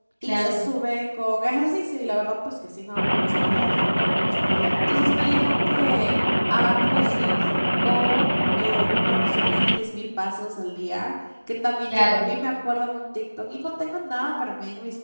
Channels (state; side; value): inverted; both; correlation -1.00